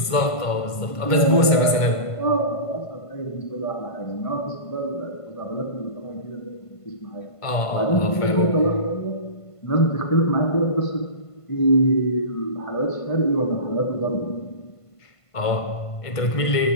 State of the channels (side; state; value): right; late; 1.5 ms